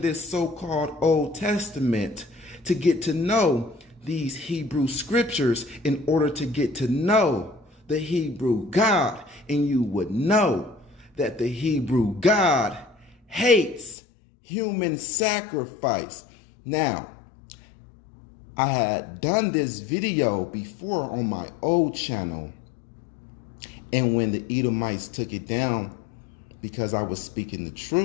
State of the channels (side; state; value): right; drops out; at 14.0 s